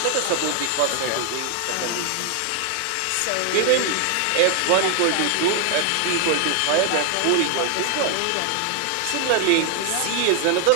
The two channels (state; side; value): different; both; correlation 0.00